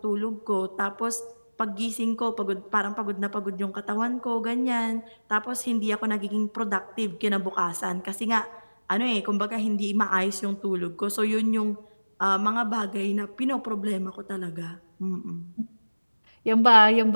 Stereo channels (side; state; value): both; inverted; correlation -1.00